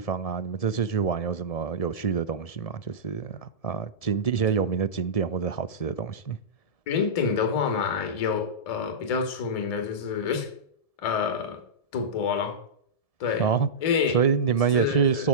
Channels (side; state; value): right; late; 1.7 ms